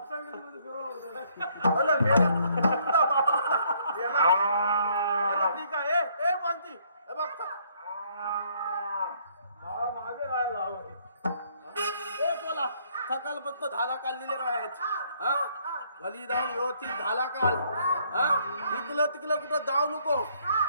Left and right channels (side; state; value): both; inverted; correlation -0.67